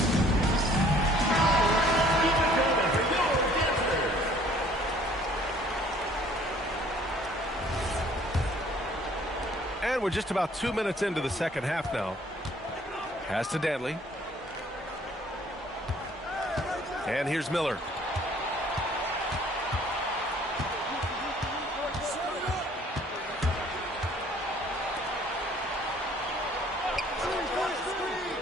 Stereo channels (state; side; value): normal; both; correlation 0.57